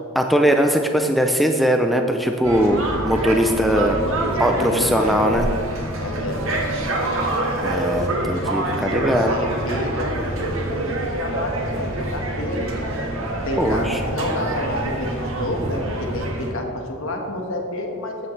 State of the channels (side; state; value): both; normal; correlation 0.52